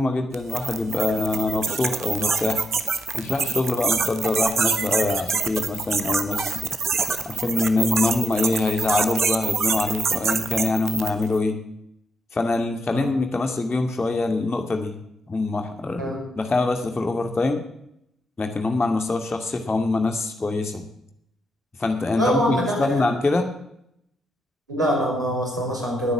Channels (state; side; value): normal; both; correlation 0.81